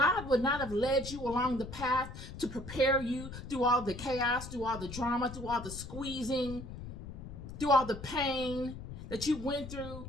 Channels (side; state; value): left; noise; rumble, 11 dB below the sound